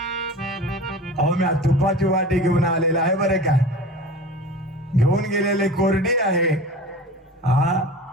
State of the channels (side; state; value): both; normal; correlation 0.36